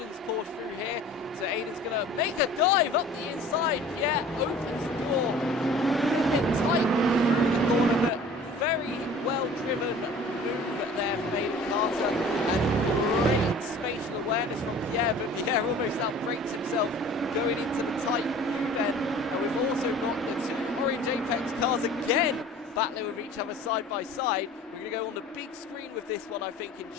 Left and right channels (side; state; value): both; normal; correlation 0.45